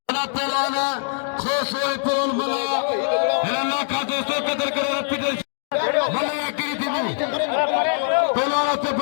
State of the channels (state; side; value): silent; right; digital silence